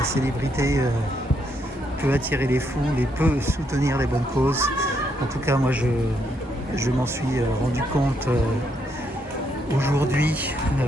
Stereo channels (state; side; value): normal; both; correlation 0.76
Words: célébrité peut attirer les foules et peut soutenir les bonnes causes. En tout cas moi je m'en suis rendu compte aujourd'hui